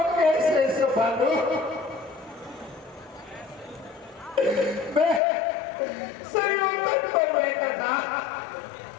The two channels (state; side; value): drops out; right; at 5.2 s